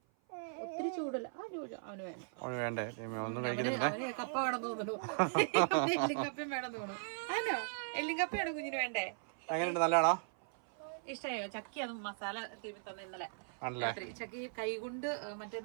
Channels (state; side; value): silent; left; 52 dB below the other